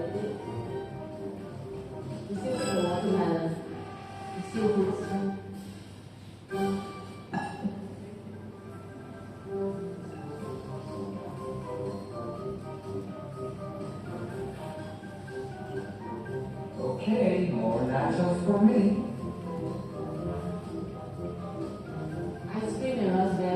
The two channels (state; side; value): identical; both; correlation 1.00